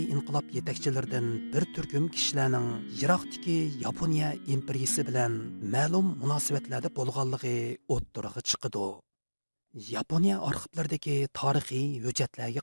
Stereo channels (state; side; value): inverted; both; correlation -1.00